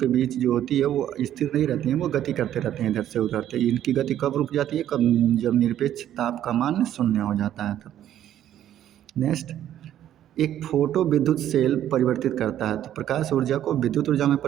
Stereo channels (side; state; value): left; quieter; 11.4 dB